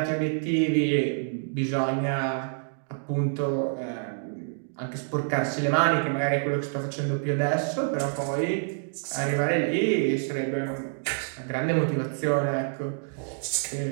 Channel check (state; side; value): silent; left; digital silence